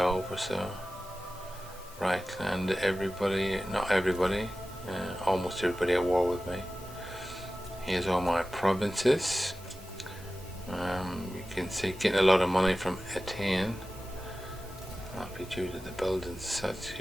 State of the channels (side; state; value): both; normal; correlation 0.95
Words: or so. Reichland, everybody, not everybody, almost everybody at war with me. Here's all my provinces. You can see getting a lot of money from Etienne. That'll be due to the buildings such.